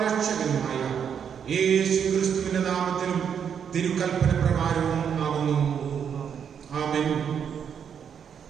രക്ഷകനുമായ യേശുക്രിസ്തുവിന്റെ നാമത്തിലും തിരുക്കൽപ്പന പ്രകാരവും ആകുന്നു. ആമേൻ.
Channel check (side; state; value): left; quieter; 7.7 dB